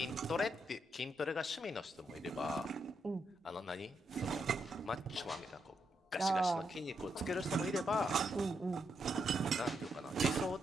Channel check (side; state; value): both; normal; correlation 0.81